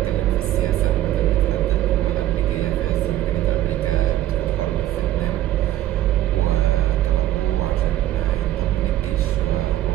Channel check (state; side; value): quieter; left; 13.3 dB